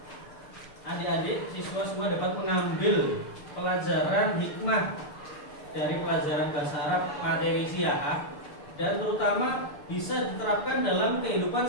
adik-adik siswa semua dapat mengambil pelajaran hikmah dari pelajaran bahasa Arab materi siah dan terutama bisa diterapkan dalam kehidupan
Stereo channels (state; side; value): late; right; 6.7 ms